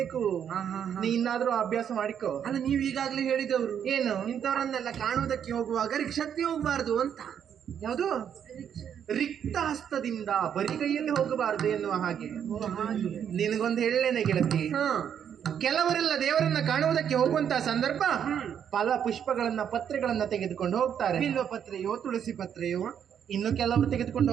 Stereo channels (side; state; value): left; quieter; 8.6 dB